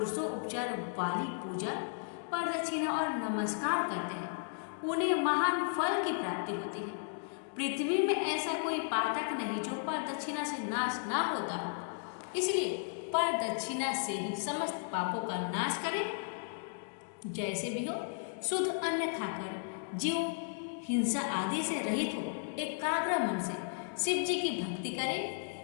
उपचार वाली पूजा, प्रदक्षिणा और नमस्कार करते हैं उन्हें महान फल की प्राप्ति होती है। पृथ्वी में ऐसा कोई पातक नहीं जो प्रदक्षिणा से नाश ना होता हो, इसलिए प्रदक्षिणा से ही समस्त पापों का नाश करें। जैसे भी हो, शुद्ध अन्न खाकर जीव हिंसा आदि से रहित हो, एकाग्र मन से शिव जी की भक्ति करे,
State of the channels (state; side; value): silent; right; digital silence